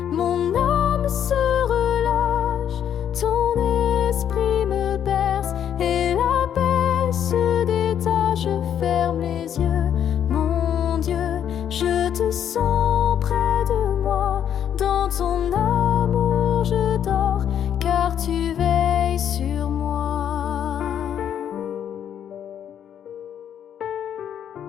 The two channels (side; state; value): right; quieter; 9.3 dB